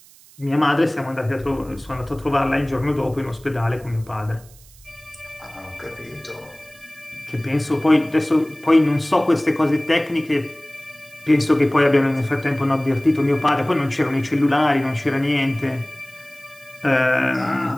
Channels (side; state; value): right; noise; hiss, 25 dB below the sound